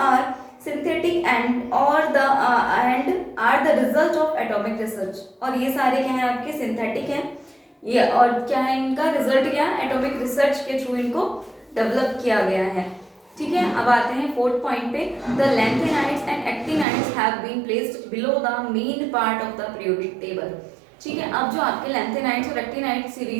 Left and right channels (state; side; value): drops out; left; at 16.9 s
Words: synthetic and are the result of atomic research. और ये सारे क्या हैं आपके? सिंथेटिक हैं ये, और क्या है इनका रिजल्ट? क्या? एटॉमिक रिसर्च के थ्रू इनको डेवलप किया गया है, ठीक है। अब आते हैं 4th पॉइंट पे। The lanthanides and actinides have been placed below the main part of the periodic table, ठीक है। अब जो आपके लेंथेनाइड्स और एक्टिनाइड